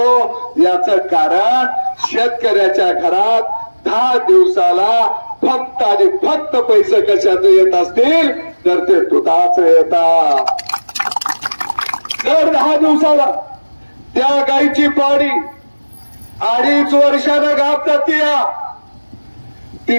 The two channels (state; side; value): inverted; both; correlation -1.00